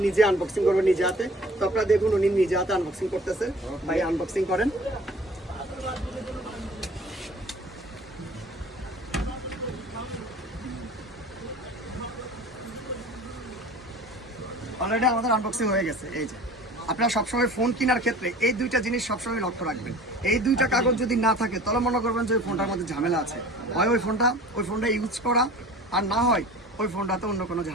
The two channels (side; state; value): both; normal; correlation 0.44